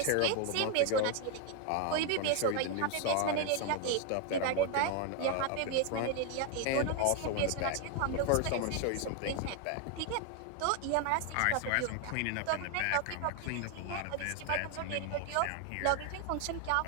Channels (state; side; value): different; both; correlation 0.01